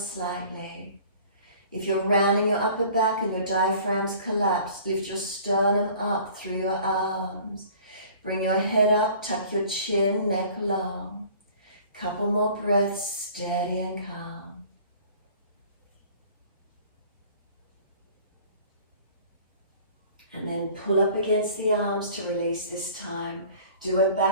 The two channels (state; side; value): inverted; both; correlation -0.49